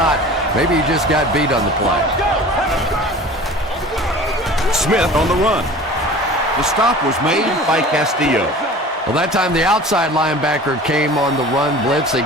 Maybe he just got beat on the play. Smith on the run. The stop was made by Castillo. Well, that time the outside linebacker came on the run blitz. They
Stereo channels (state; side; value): normal; both; correlation 0.41